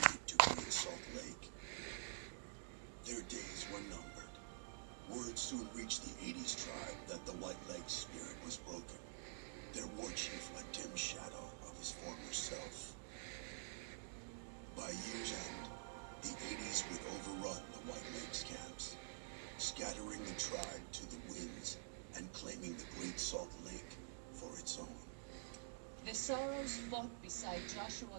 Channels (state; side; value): silent; left; digital silence